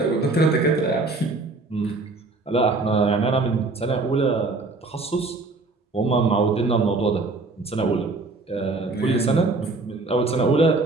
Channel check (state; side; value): quieter; left; 3.5 dB